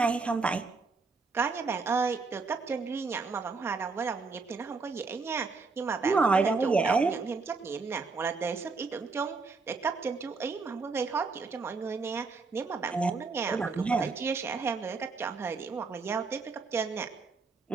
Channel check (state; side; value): quieter; left; 4.3 dB